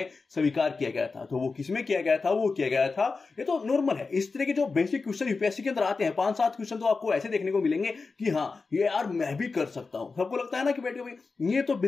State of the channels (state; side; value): quieter; right; 4.3 dB